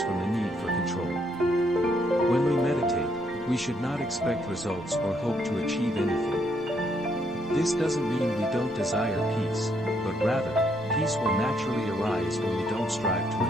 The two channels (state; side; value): normal; both; correlation 0.72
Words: from the need for control. When we meditate, we should not expect results or hope to achieve anything. This doesn't mean we don't desire peace, but rather, peace will naturally arise when we don't strive to